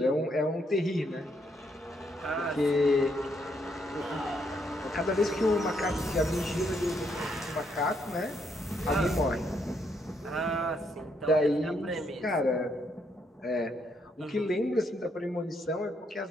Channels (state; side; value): normal; both; correlation 0.74